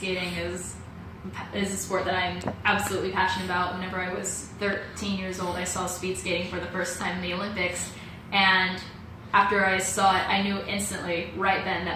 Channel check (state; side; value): identical; both; correlation 1.00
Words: is a sport that I'm absolutely passionate about. Whenever I was 13 years old, I saw speed skating for the first time in the Olympics, and after I saw it, I knew instantly, right then,